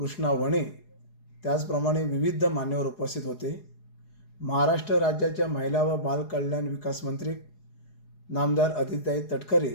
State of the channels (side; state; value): right; late; 4.8 ms